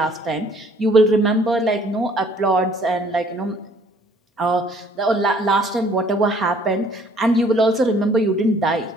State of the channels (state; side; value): normal; both; correlation 0.59